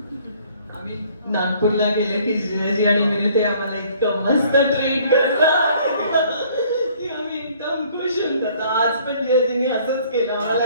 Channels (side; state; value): both; inverted; correlation -0.58